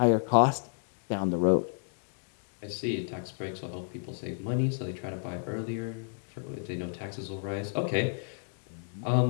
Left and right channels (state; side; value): silent; right; digital silence